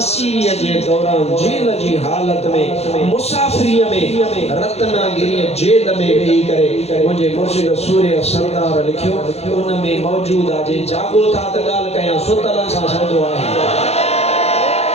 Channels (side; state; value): right; late; 0.31 ms